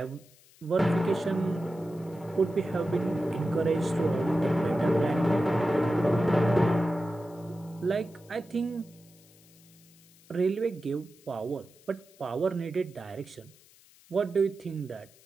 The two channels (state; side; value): noise; left; hiss, 27 dB below the sound